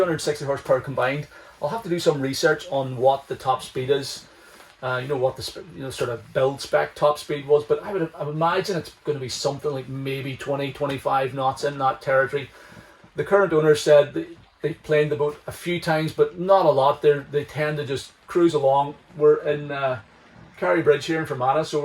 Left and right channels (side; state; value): both; identical; correlation 1.00